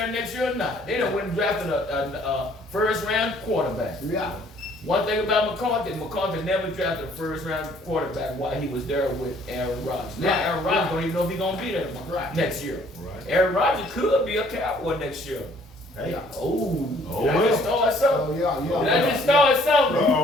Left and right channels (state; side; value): normal; both; correlation 0.60